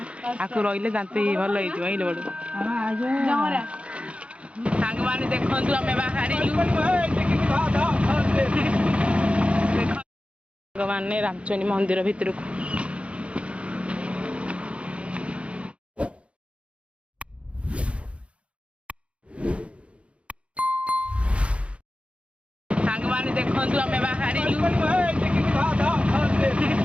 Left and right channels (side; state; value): left; late; 0.061 ms